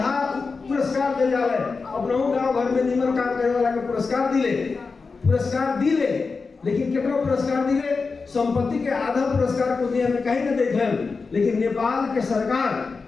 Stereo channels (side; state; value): right; quieter; 4.5 dB